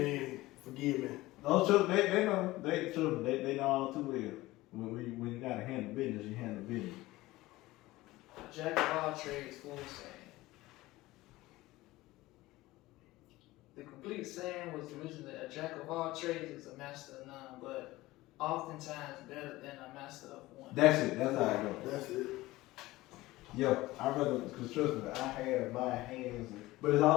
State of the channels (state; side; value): quieter; right; 18.5 dB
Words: and forgive me. No, children, they know. They know all too well. When you gotta handle business, you handle business. Jack of all trades, full saying. The complete saying was originally a jack of all trades is a master of none, but oftentimes better than a master of one. That's it. That's how it goes. That's it. Yeah, I rather, because trust me, I have my hands, but it's